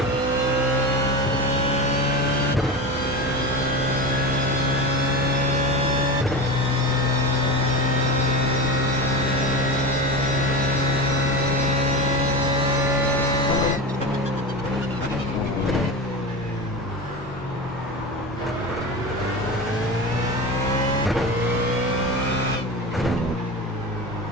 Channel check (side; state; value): both; normal; correlation 0.24